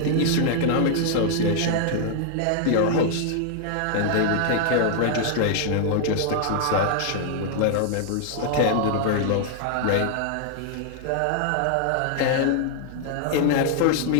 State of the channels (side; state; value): both; different; correlation 0.00